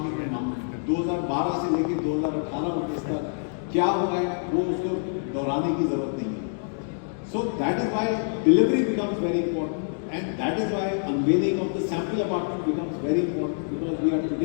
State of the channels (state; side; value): silent; right; digital silence